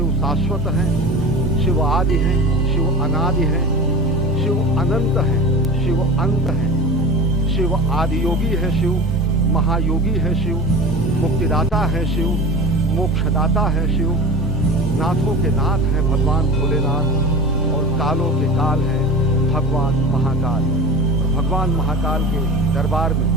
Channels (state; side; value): normal; both; correlation 0.33